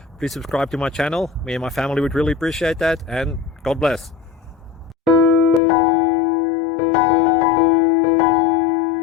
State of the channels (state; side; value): drops out; right; at 5.6 s